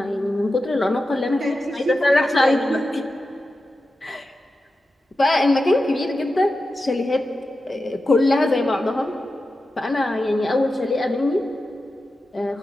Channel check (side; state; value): both; normal; correlation 0.92